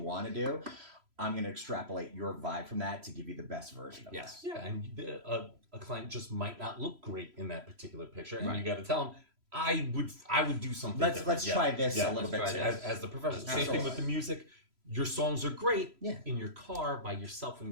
to do. I'm going to extrapolate your vibe from that to give you the best version of Yes. Yeah, and a client just might not look great in that particular picture, and Right. you got to tell them, I would do something. Let's different. try this a little let's bit try too. this. As the professional. Same Absolutely. thing with the music. Your songs are great Yeah. in your car by yourself when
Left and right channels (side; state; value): left; late; 3.0 ms